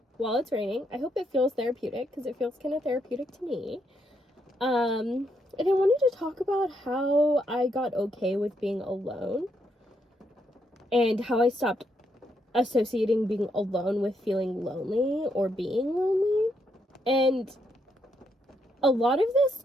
while it's raining. I hope it feels therapeutic, because it feels kind of therapeutic to me. And I wanted to talk about how I got okay with being alone and how I stopped associating being alone with feeling lonely or being lonely. And a lot of this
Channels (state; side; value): normal; both; correlation 0.77